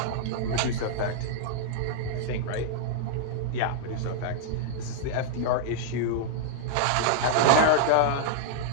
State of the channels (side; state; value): both; different; correlation -0.02